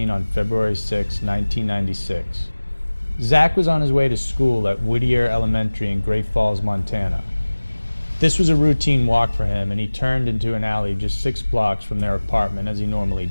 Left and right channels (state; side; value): inverted; both; correlation -1.00